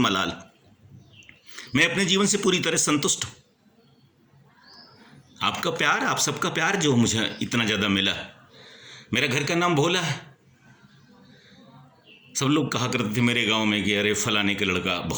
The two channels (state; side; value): identical; both; correlation 1.00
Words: मैं अपने जीवन से पूरी तरह संतुष्ट हूँ। आपका प्यार, आप सबका प्यार जो मुझे इतना ज़्यादा मिला। मेरा घर का नाम भोला है। सब लोग कहा करते थे मेरे गांव में कि अरे फलाने का लड़का